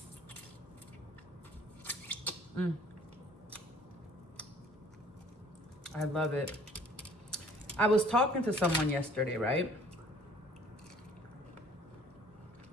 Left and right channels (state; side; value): normal; both; correlation 0.54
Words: I love it. I was talking to someone yesterday, right?